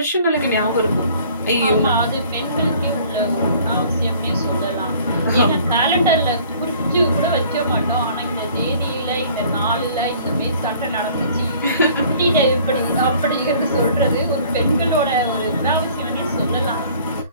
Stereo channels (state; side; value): inverted; both; correlation -0.53